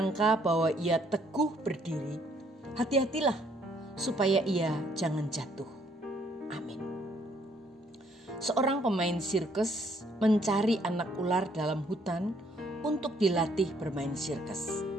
bahwa ia teguh berdiri, hati-hatilah supaya ia jangan jatuh. Amin. Seorang pemain sirkus mencari anak ular dalam hutan untuk dilatih bermain sirkus.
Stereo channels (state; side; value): normal; both; correlation 0.66